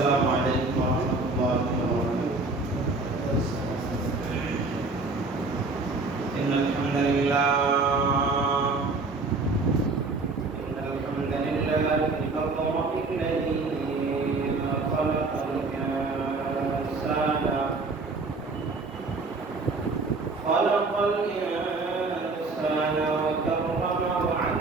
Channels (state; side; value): quieter; left; 3.6 dB